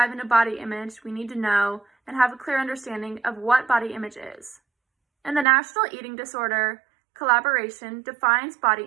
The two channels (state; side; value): drops out; left; at 5.5 s